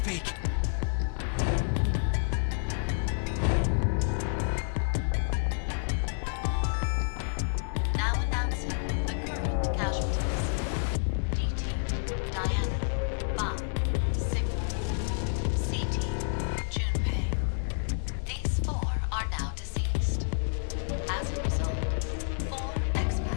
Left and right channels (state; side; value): silent; right; digital silence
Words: Now announcing the current casualties. D-Team, Diana, Bai, Sigma. C-Team, Junpei. These 4 are now deceased. As a result, 4